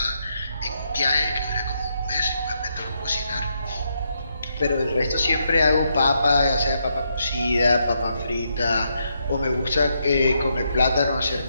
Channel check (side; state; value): both; inverted; correlation -0.79